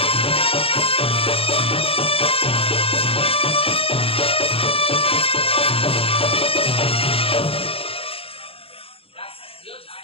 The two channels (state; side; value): late; right; 0.27 ms